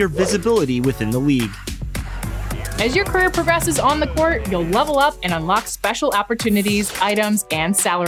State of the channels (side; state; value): both; identical; correlation 1.00